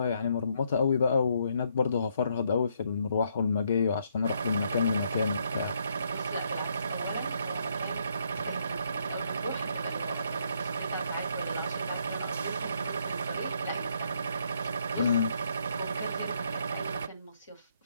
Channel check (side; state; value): both; inverted; correlation -0.73